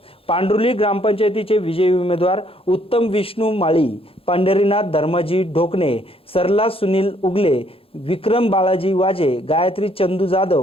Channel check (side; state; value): right; late; 0.27 ms